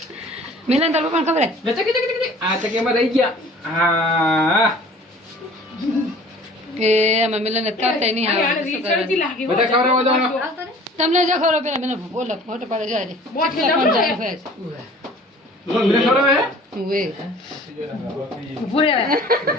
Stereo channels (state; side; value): normal; both; correlation 0.48